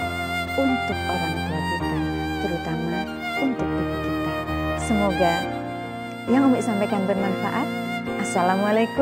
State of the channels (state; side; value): identical; both; correlation 1.00